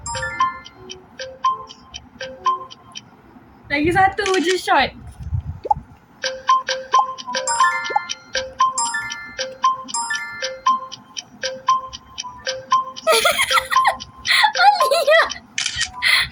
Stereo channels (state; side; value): identical; both; correlation 1.00